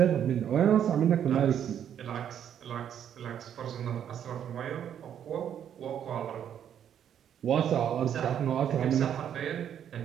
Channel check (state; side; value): quieter; left; 9.4 dB